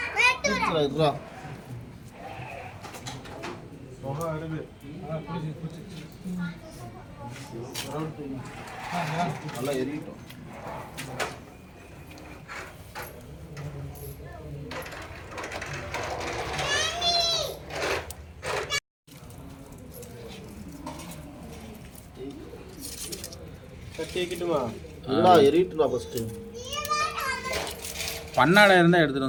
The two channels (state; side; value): identical; both; correlation 1.00